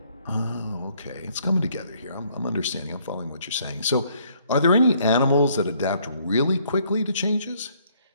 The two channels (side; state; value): both; inverted; correlation -0.66